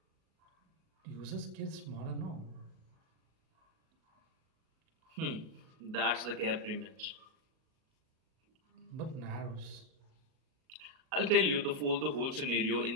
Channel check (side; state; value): left; late; 38 ms